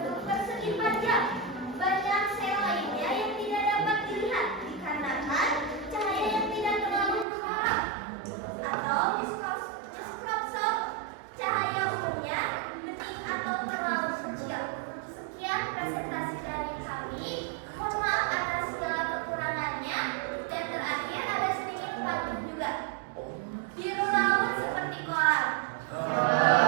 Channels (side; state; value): left; drops out; at 7.2 s